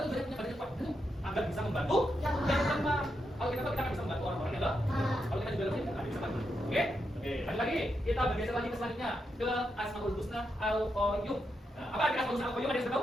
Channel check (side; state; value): both; normal; correlation 0.83